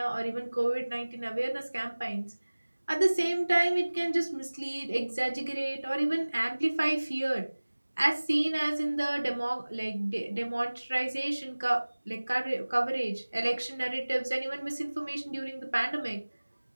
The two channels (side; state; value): both; inverted; correlation -1.00